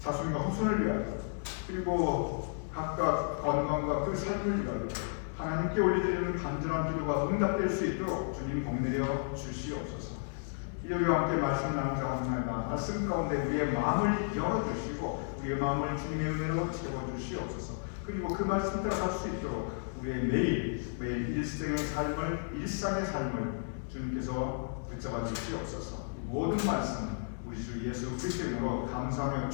후손을 위하여 그리고 각각 건강과 그 삶을 위하여 하나님께 올려드리는 간절한 기도가 응답될 수 있도록 주님 복내려 주시옵소서. 일요일과 함께 말씀을 나누자 하옵나이다. 말씀 가운데 우리의 마음을 열어주시고 우리의 마음을 주님의 은혜로 채워주시옵소서. 그리고 그 말씀 따라 살 수 있도록 우리의 매일 일상의 삶을 주님께서 붙잡아 주시옵소서. 모든 말씀 우리 주 예수 그리스도 이름으로 감사하며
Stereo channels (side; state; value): right; silent; digital silence